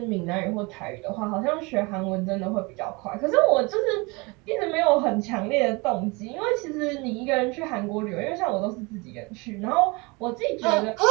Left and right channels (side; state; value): left; quieter; 26.7 dB